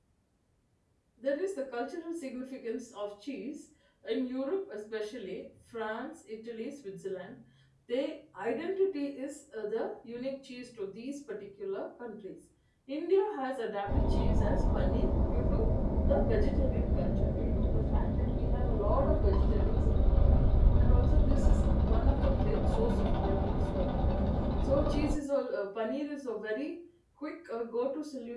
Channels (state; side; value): identical; both; correlation 1.00